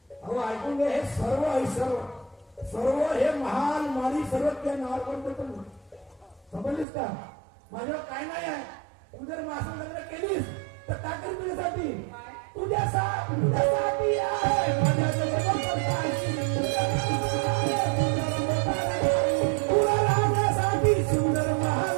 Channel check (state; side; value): drops out; left; at 6.9 s